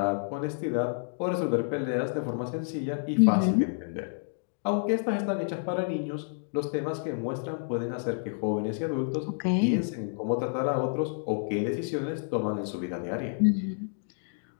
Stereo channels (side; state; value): right; silent; digital silence